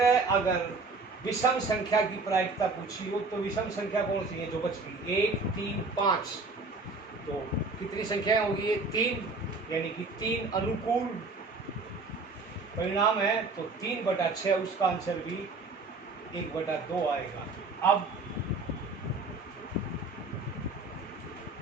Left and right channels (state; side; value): quieter; left; 3.7 dB